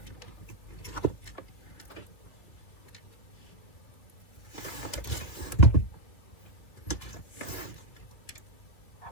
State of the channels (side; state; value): right; late; 3.0 ms